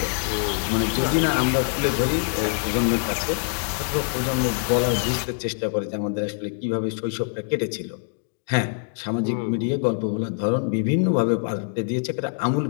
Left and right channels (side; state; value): right; silent; digital silence